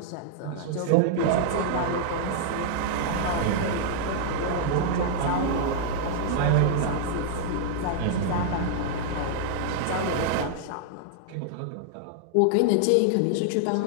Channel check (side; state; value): both; different; correlation -0.01